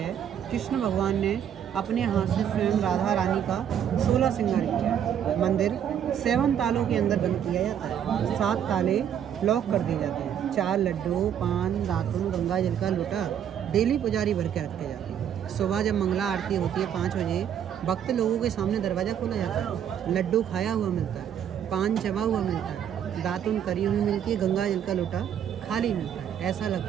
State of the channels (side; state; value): left; quieter; 9.2 dB